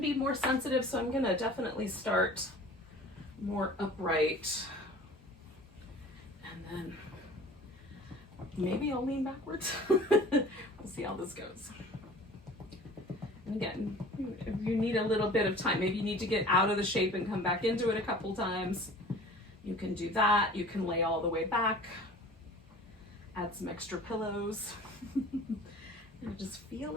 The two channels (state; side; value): normal; both; correlation 0.44